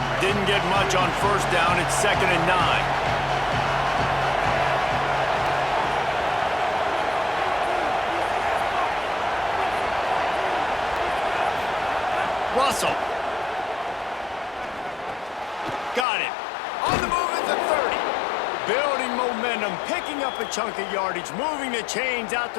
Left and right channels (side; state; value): right; drops out; at 16.1 s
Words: Didn't get much on first down. It's 2nd and 9. Russell. Got it. On the move at the 30. Building momentum, picking up a chunk of yardage, moving the chains out